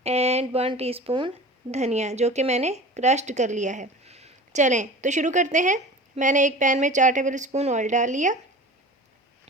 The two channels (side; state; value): both; normal; correlation 0.37